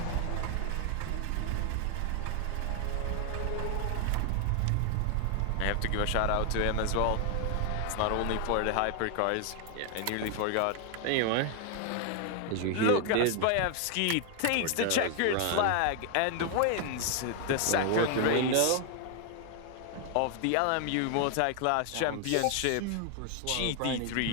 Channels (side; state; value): both; different; correlation 0.00